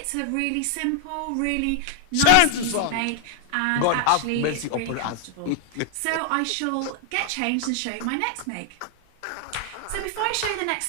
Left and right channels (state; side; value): different; both; correlation 0.00